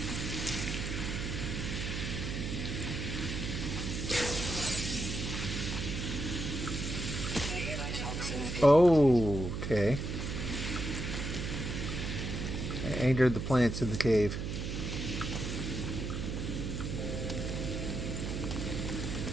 Oh, okay. I angered the plants in the cave.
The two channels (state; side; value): noise; right; hum, 3 dB below the sound